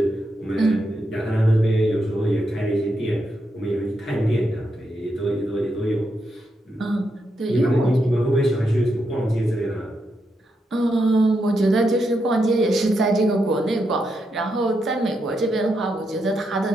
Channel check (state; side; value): normal; both; correlation 0.83